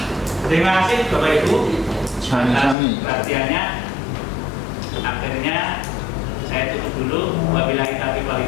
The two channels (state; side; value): drops out; right; at 2.8 s